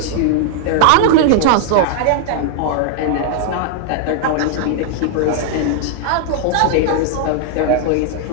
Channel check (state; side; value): different; both; correlation 0.00